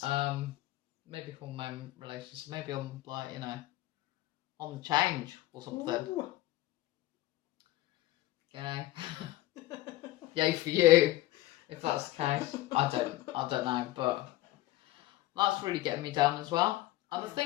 Maybe hormone related. So maybe I'm like, on the change or something. Ooh. Yay for you, if that's the case. I don't know, but that's really getting me down as well. And I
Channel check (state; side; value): quieter; right; 16.5 dB